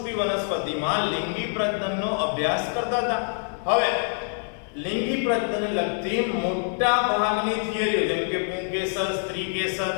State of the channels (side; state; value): right; silent; 61 dB below the other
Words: વનસ્પતિમાં લિંગી પ્રજનનનો અભ્યાસ કરતા હતા. હવે લિંગી પ્રજનનને લગતી મોટા ભાગની થિયરીઓ જેમ કે પુંકેસર, સ્ત્રીકેસર,